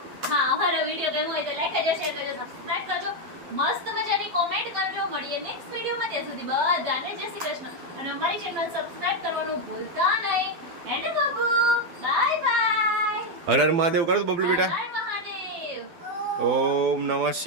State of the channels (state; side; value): late; left; 12 ms